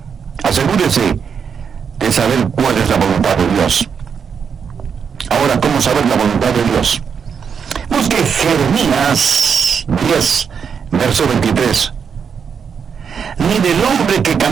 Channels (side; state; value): left; quieter; 6.7 dB